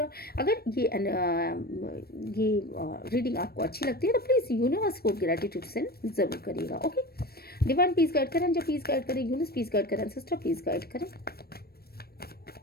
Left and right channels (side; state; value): right; late; 0.45 ms